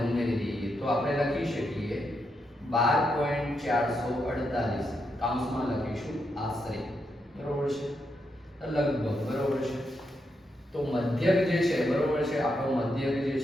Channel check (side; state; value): both; normal; correlation 0.82